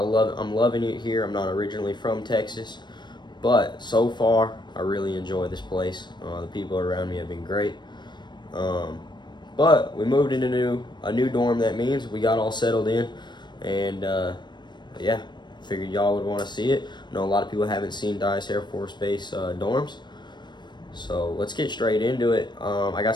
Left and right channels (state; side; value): late; right; 0.22 ms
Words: loving it here. I'm not originally from Texas, but so far I really enjoy this place. The people around me have been great. But we moved into a new dorm. That means we got all settled in, and yeah, figured y'all would want to see it. I know a lot of people haven't seen Dyess Air Force Base dorms, so let's get straight into it. I